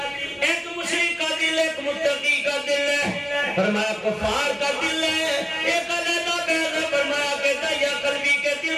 ایک مشرک کا دل، ایک متقی کا دل ہے. فرمایا کفار کا دل ہے، ایک علیحدہ بحث ہے. فرمایا کہ داعیہ قلبی کے دل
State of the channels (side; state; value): both; identical; correlation 1.00